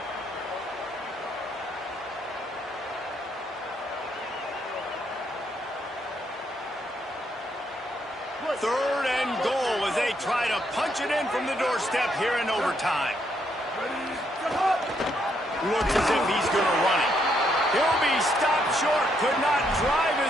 Third and goal as they try to punch it in from the doorstep here in overtime. Looks as if he's going to run it. He'll be stopped short. Could not drive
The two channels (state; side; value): normal; both; correlation 0.75